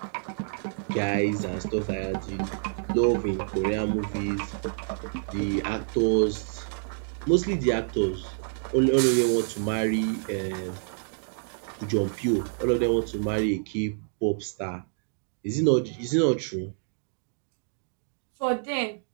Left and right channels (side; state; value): left; silent; digital silence